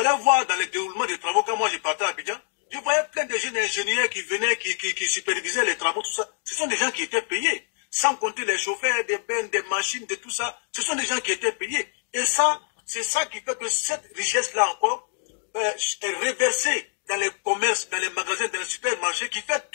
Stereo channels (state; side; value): silent; right; digital silence